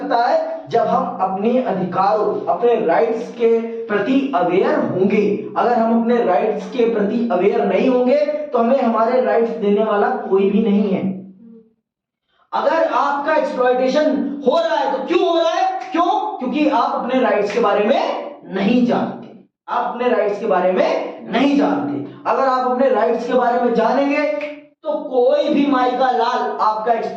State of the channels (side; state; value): both; identical; correlation 1.00